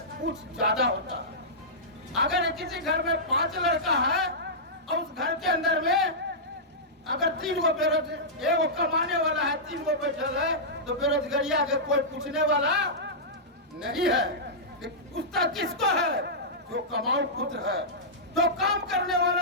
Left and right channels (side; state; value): both; normal; correlation -0.14